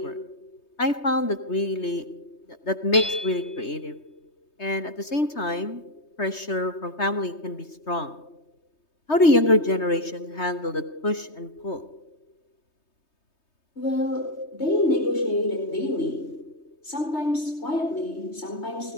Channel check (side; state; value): right; late; 3.2 ms